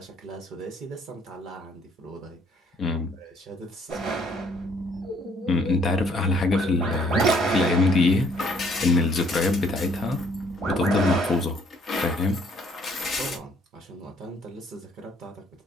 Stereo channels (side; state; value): both; normal; correlation 0.63